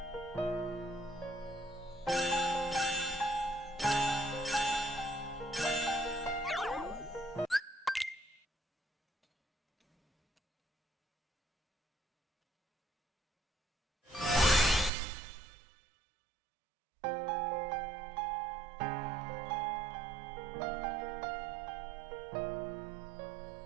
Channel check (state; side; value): drops out; left; at 14.9 s